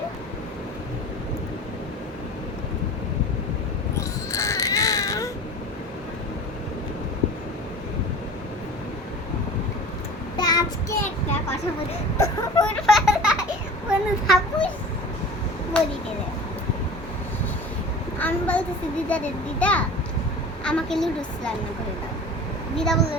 আজকে একটা কথা বলি, কোনো থাপুস বলি গেলে আমি বলতেছি দিদা আমাকে লুডুস রান্না করে দাও। দিদা বললো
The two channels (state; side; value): normal; both; correlation 0.38